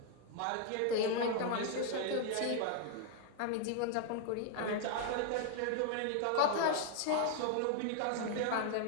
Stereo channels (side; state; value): both; different; correlation 0.00